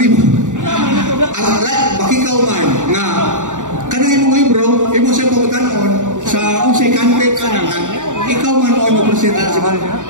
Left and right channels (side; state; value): left; late; 0.86 ms